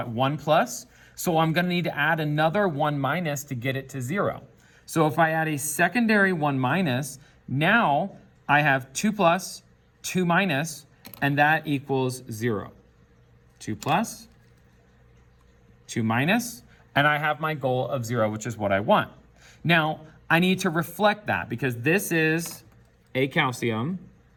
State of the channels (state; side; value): identical; both; correlation 1.00